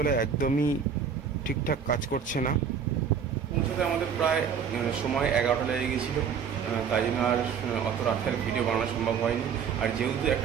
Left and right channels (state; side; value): quieter; left; 7.1 dB